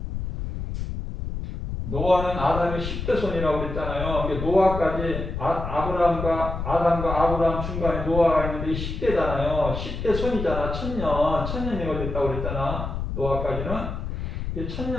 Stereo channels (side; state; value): left; noise; rumble, 5 dB below the sound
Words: 노아는 아담의 10대 손이라고 그랬잖아요. 노아까지 아담과 아브라함 중간에 노아가 있는데 10대잖아요. 10대 손이잖아. 천년이 걸렸다고 그랬잖아. 노아까지는.